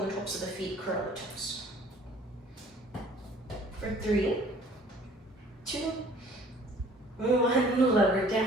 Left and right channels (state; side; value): normal; both; correlation 0.53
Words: tops of the feet, curl the toes. For 3, 2, 1, lower